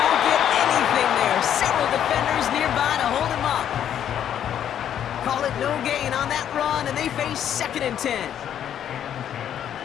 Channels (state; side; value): quieter; right; 9.8 dB